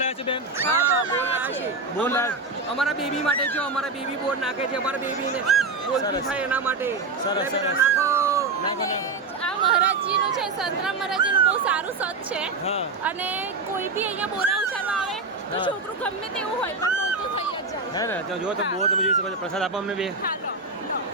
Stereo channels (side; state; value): left; quieter; 3.8 dB